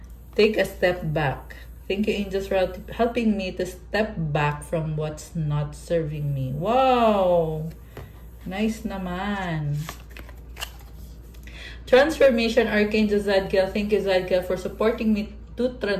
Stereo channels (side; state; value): both; identical; correlation 1.00